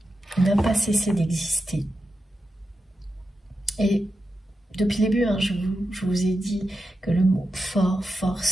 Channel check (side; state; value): both; normal; correlation 0.89